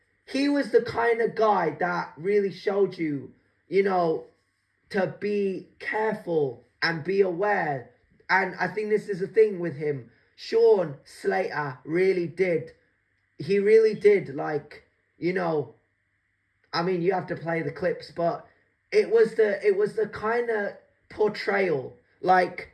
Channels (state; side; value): identical; both; correlation 1.00